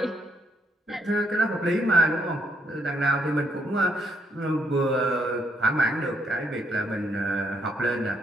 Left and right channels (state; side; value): normal; both; correlation 0.73